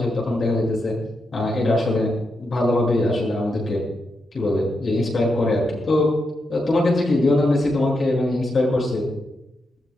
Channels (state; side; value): normal; both; correlation 0.84